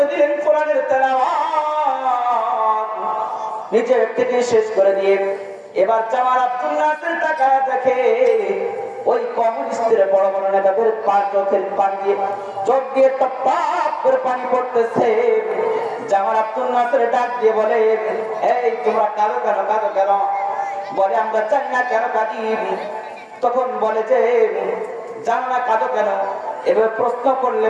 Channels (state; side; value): identical; both; correlation 1.00